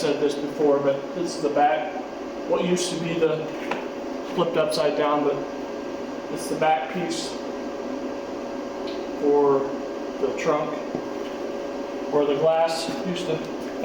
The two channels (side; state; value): both; identical; correlation 1.00